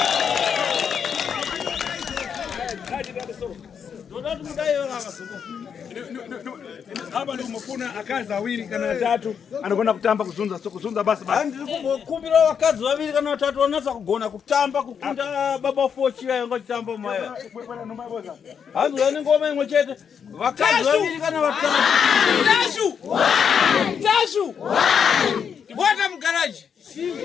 Ndoda kuti mudaiwe kakasuko. Hapa ndio umefuna akazi awili kana tatu anakwenda kutamba kuzunza basi. Ndiri kumbokumbira vakadzi vaviri kana vatatu vanatsa kugona kutamba kukunda baba fochi vainga chitamba maya. Hanzi vane ngoma imwe chete. Vakadzi vaviri kana vatatu. Tashu! Bwana mgaraji.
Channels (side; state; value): right; quieter; 7.2 dB